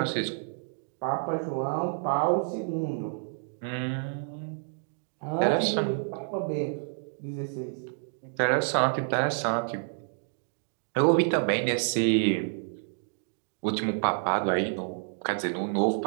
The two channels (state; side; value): silent; left; digital silence